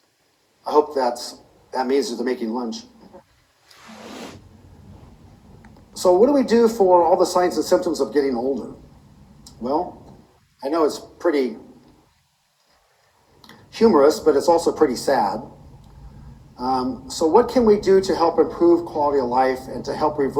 I hope that means that they're making lunch. So what do we do for all the signs and symptoms of getting older? Well, I know it's pretty humorous, but it's also pretty sad. So what can we do to help improve quality of life and to help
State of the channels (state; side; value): identical; both; correlation 1.00